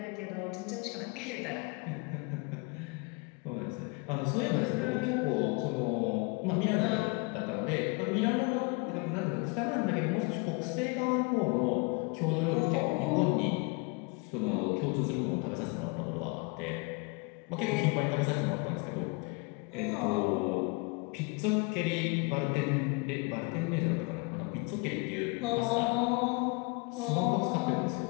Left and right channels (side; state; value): right; quieter; 29.6 dB